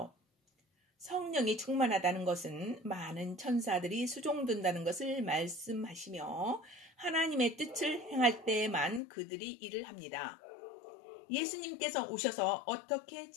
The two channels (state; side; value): drops out; right; at 9.0 s